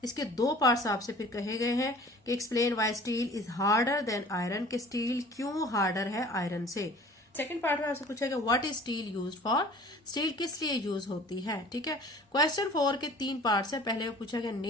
इसके 2 पार्ट्स आपसे फिर कहे गए हैं कि explain why steel is harder than iron, के स्टील क्यों हार्डर है आयरन से। सेकंड पार्ट में आपसे पूछा गया what is steel used for, steel किस लिए यूज होती है। ठीक है, क्वेश्चन 4 के 3 पार्ट्स है। पहले में पूछा गया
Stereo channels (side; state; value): both; normal; correlation 0.47